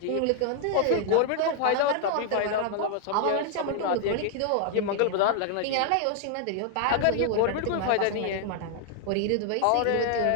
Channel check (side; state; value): both; different; correlation 0.00